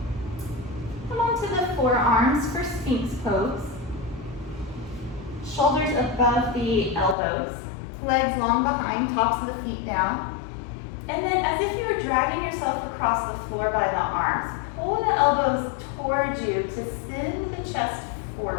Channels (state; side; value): drops out; right; at 7.2 s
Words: Come onto the forearms for Sphinx pose. Shoulders above the elbows, legs long behind, tops of the feet down. And then as if you were dragging yourself across the floor by the arms, pull the elbows towards you to send the chest